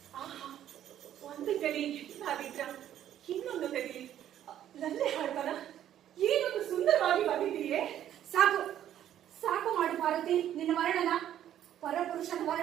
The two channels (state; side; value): quieter; left; 11.1 dB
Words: ಆಹಾ, ಒಂದು ಕಲಿ ಹಾಗಿದ್ರ ಇನ್ನೊಂದು ತೆಗೆಲಿ ಲಲ್ಲೆ ಹಾಡ್ತಾರ. ಏನೊಂದು ಸುಂದರವಾಗಿ ಬಂದಿದೆಯೇ. ಸಾಕು ಸಾಕು ಮಾಡು ಪಾರ್ವತಿ, ನಿನ್ನ ವರ್ಣನ ಪರಪುರುಷನ